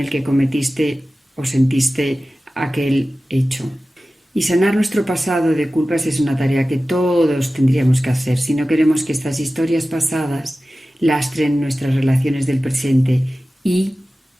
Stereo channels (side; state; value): both; normal; correlation 0.96